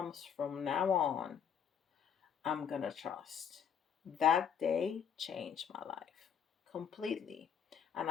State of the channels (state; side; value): quieter; right; 7.9 dB